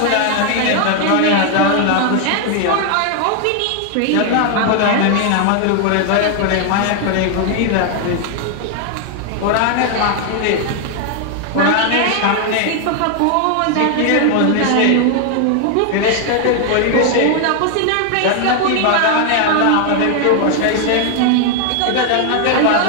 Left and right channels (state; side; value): different; both; correlation 0.00